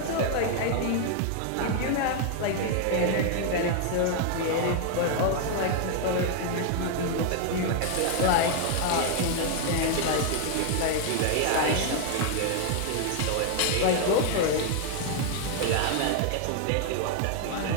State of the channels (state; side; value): different; both; correlation 0.00